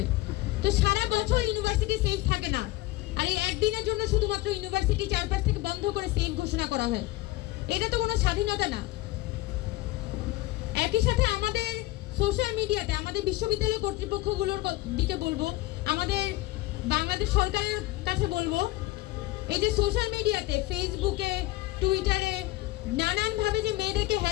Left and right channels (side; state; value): right; quieter; 18.1 dB